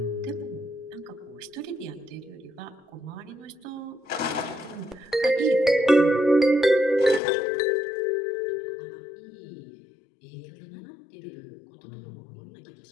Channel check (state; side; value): drops out; right; at 7.2 s